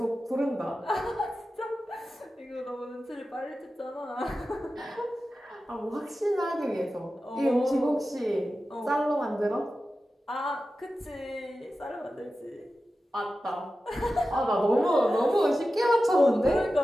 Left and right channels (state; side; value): normal; both; correlation 0.93